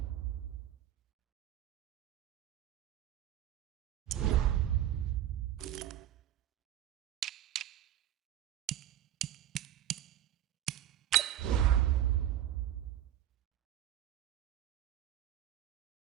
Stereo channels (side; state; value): left; quieter; 11.9 dB